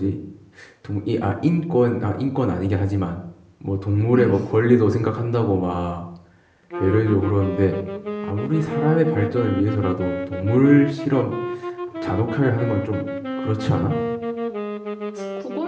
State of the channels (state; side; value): identical; both; correlation 1.00